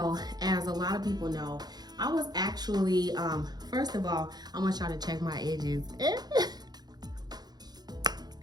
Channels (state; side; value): late; left; 0.20 ms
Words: as a lot of people know, I was actually first of all, I want y'all to check my edges.